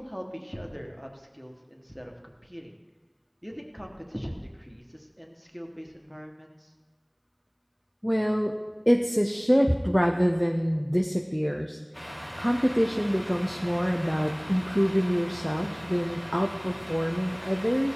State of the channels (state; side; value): identical; both; correlation 1.00